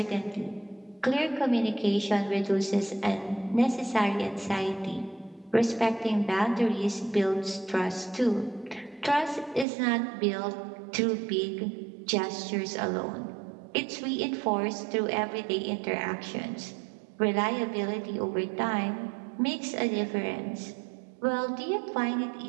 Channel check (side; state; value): left; drops out; at 9.7 s